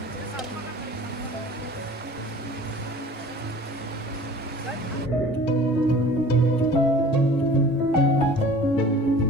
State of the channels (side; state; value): both; normal; correlation 0.45